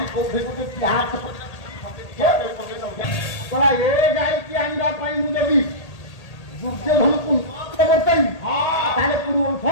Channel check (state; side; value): late; right; 1.8 ms